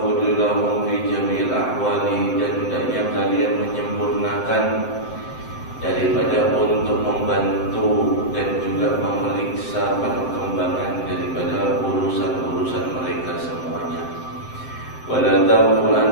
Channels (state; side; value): late; right; 7.8 ms